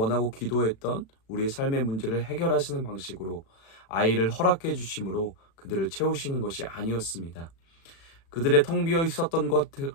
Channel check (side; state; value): right; late; 36 ms